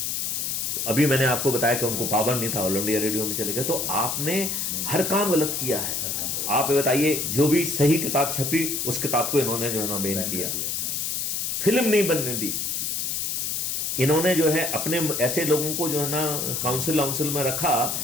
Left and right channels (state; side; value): noise; left; hiss, 1 dB below the sound